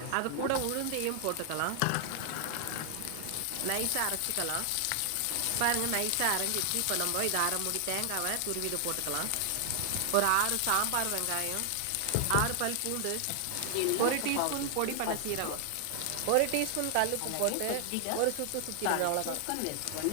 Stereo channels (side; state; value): both; different; correlation 0.00